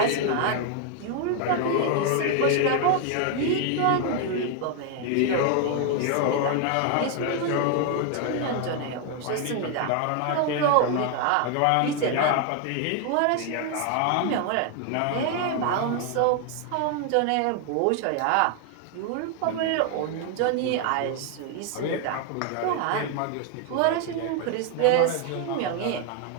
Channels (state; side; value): different; both; correlation 0.01